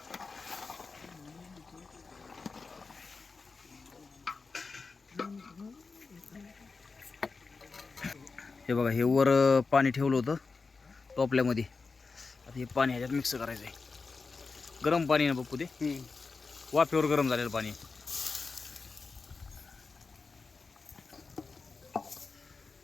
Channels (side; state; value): right; quieter; 4.4 dB